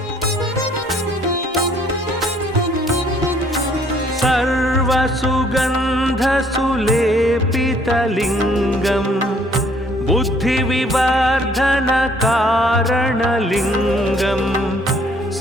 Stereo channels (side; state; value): both; normal; correlation 0.62